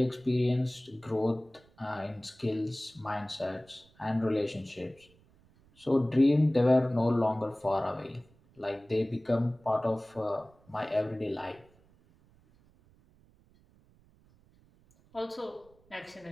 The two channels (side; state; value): right; noise; rumble, 30 dB below the sound